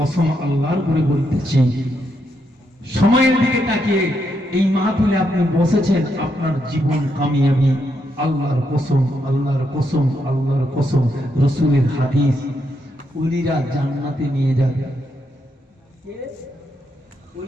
আল্লাহর করে বলতেছি, সময়ের দিকে তাকিয়ে এই মাহফিলে আপনি বসেছেন, আপনার জীবন কামিয়াবি। আল্লাহর কসম, আল্লাহর কসম, আল্লাহর কসম, রাসূলের হাদিস, ওলিরা জান্নাতে নিয়ে যাবে।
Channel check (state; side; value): normal; both; correlation 0.80